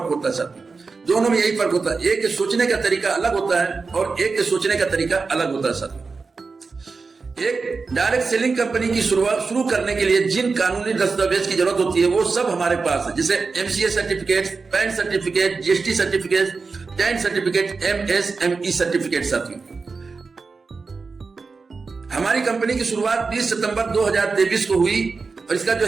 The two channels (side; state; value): left; quieter; 4.5 dB